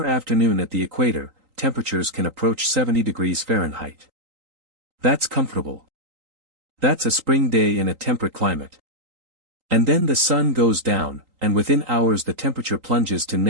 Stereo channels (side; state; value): left; late; 3.8 ms